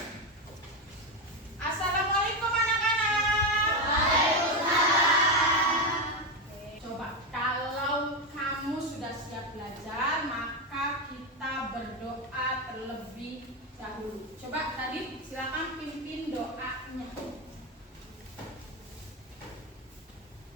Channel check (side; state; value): both; normal; correlation 0.11